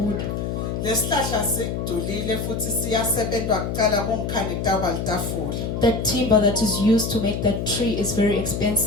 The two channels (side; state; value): left; noise; hum, 3 dB below the sound